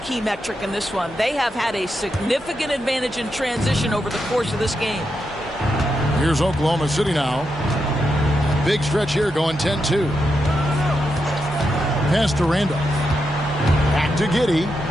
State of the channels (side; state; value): both; normal; correlation 0.85